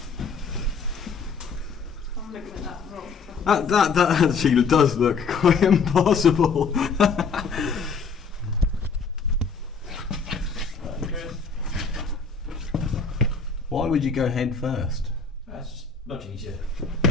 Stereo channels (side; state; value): right; quieter; 5.2 dB